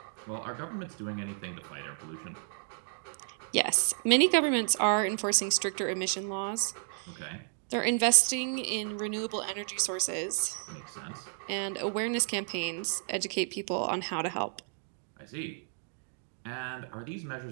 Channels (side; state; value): left; silent; 56 dB below the other